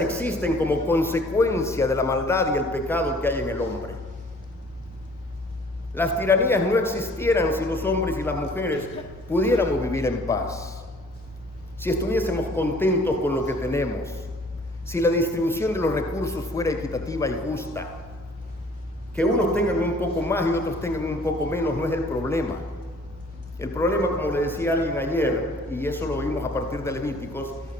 como consecuencia de la maldad y el pecado que hay en el hombre. Las tiranías no existieran si los hombres y las mujeres pudiéramos vivir en paz, si estuviésemos contentos con lo que tenemos, si la distribución de los recursos fuera equitativa y justa. Que unos tengan un poco más y otros tengan un poco menos no es el problema. El problema, como le decía alguien ayer, y eso lo vimos a partir de Levíticos,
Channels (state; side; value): normal; both; correlation 0.55